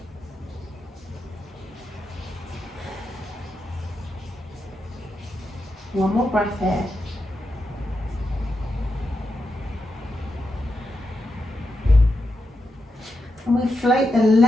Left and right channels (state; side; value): normal; both; correlation 0.86